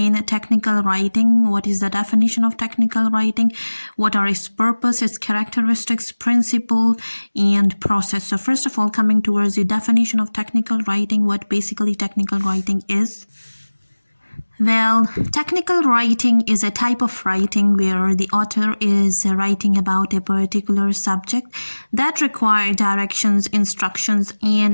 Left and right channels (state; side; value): inverted; both; correlation -1.00